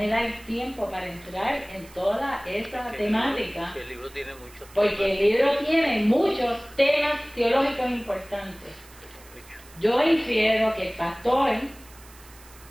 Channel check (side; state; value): right; noise; hiss, 23 dB below the sound